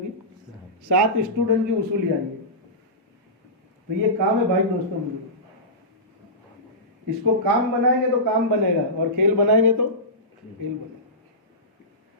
की? 7 स्टूडेंट की वसूली आई है। तो ये काम है भाई दोस्तों, इसको काम बनाएंगे तो काम बनेगा, और खेल बनाएंगे तो खेल बनेगा।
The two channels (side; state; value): both; normal; correlation -0.18